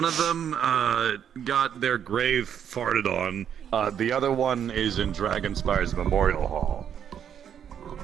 of them got their grave farted on. The other one is in Dragonspire's Memorial Hall.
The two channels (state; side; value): quieter; left; 8.8 dB